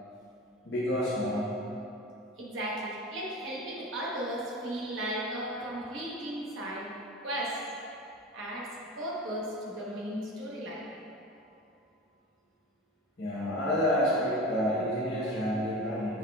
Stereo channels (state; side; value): normal; both; correlation 0.32